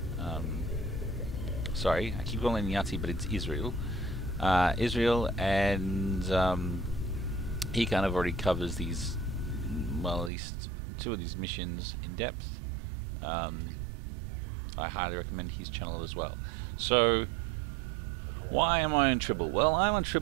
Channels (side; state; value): left; drops out; at 10.3 s